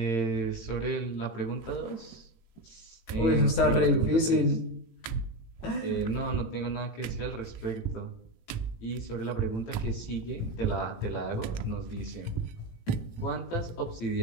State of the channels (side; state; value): right; late; 18 ms